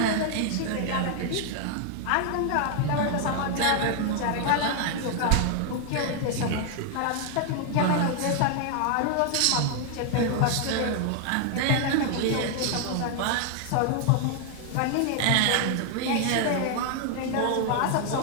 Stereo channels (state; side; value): different; both; correlation 0.00